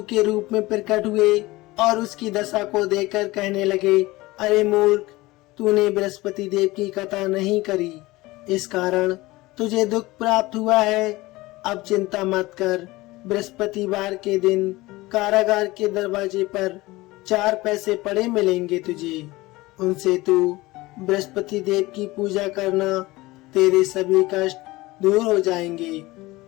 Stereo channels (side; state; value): right; quieter; 20.2 dB